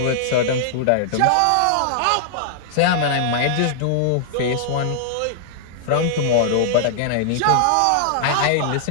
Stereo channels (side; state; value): both; different; correlation -0.01